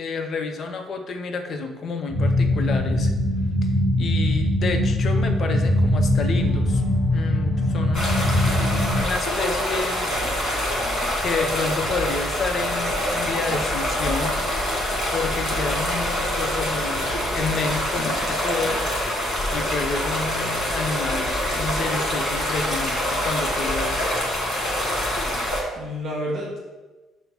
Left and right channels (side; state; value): both; normal; correlation 0.72